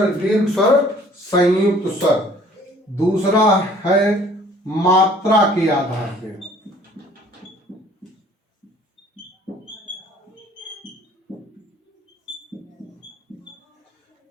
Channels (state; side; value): normal; both; correlation 0.55